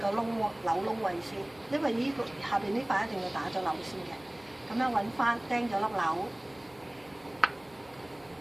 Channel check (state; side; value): noise; right; hum, 30 dB below the sound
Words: 窿扭窿位先，因為呢個下邊呢塊一定要打咗扭先嘅。咁樣揾翻釘咗粒扭，